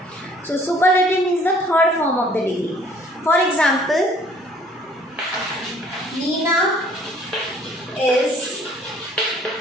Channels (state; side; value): normal; both; correlation 0.57